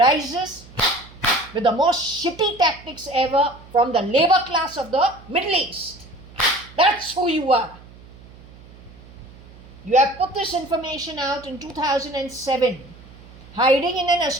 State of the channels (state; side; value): noise; right; hum, 21 dB below the sound